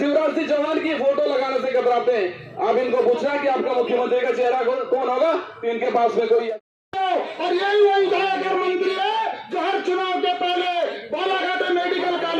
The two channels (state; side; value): identical; both; correlation 1.00